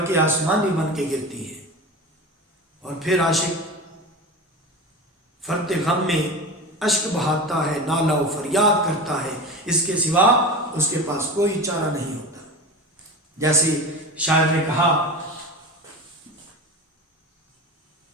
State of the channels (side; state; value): both; normal; correlation 0.29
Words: آسمانی بن کے گرتی ہے. اور پھر عاشق فرط غم میں اشک بہاتا ہے، نالہ و فریاد کرتا ہے. اس کے سوا اس کے پاس کوئی چارہ نہیں ہوتا. جیسے شاعر نے کہا